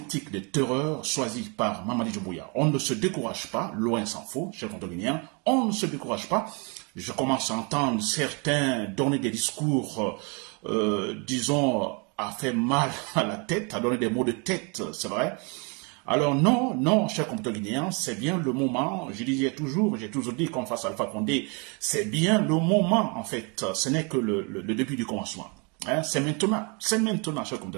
de terreur choisie par Mamadi Doumbouya. On ne se décourage pas, loin s'en faut, chers compatriotes guinéens, on ne se décourage pas. Je commence à entendre certains donner des discours, disons, à faire mal à la tête, à donner des mots de tête, c'est vrai. Alors non, chers compatriotes guinéens, c'est bien le moment, j'ai toujours dit qu'on fasse Alpha Condé, c'est bien le moment en fait, ce n'est que le début du commencement. Hein, c'est maintenant, chers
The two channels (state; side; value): quieter; left; 32.9 dB